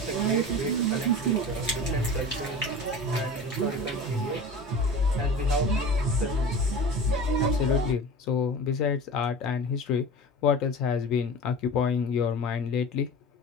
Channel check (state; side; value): normal; both; correlation 0.35